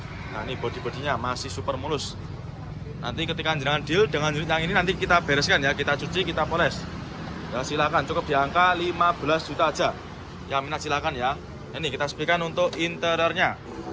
Nah, ini bodi-bodinya masih super mulus. Nanti ketika jenengan deal dengan unit yang ini nanti kita bereskan ya. Kita cuci, kita poles. Ya, silakan cukup di angka 15 juta aja. Yang minat silakan ya. Ini kita sepikan untuk interiornya.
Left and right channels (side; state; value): both; identical; correlation 1.00